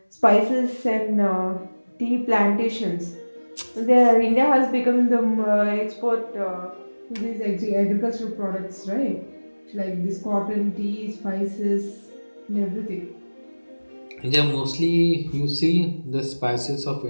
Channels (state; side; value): inverted; both; correlation -1.00